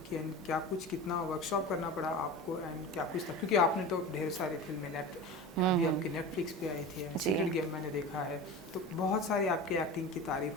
कि, एंड क्या कुछ, कितना वर्कशॉप करना पड़ा आपको, एंड क्या कुछ था? क्योंकि आपने तो ढेर सारी फिल्में अभी आपकी नेटफ्लिक्स पे आई थी, जी, सीक्रेट गेम मैंने देखा है, तो बहुत सारी आपकी एक्टिंग की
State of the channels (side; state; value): both; normal; correlation 0.31